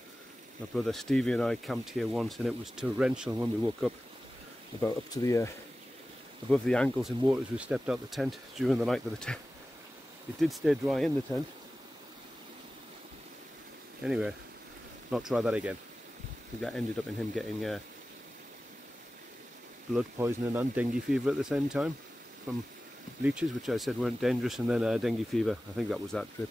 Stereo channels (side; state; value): both; normal; correlation 0.96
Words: my brother Stevie and I camped here once, and it was torrential when we woke up, about up to the above the ankles in water as we stepped out the tent during the night. Of the tent, it did stay dry in the tent. Anyway, not try that again. I think that ended up in him getting blood poisoning and dengue fever at the same time from leeches, which I said weren't dangerous, and then dengue fever. I think that was that trip.